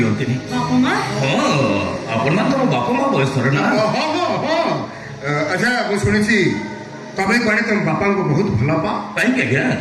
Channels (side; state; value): both; identical; correlation 1.00